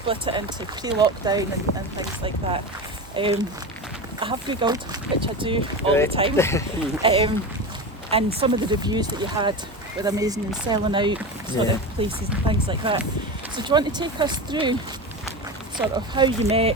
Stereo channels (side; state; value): both; normal; correlation 0.24